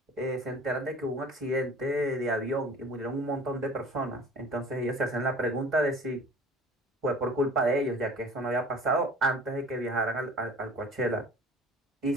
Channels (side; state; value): both; normal; correlation 0.45